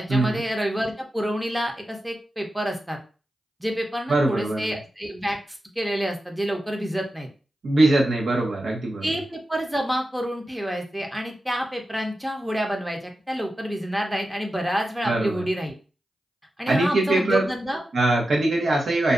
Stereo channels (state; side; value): normal; both; correlation 0.91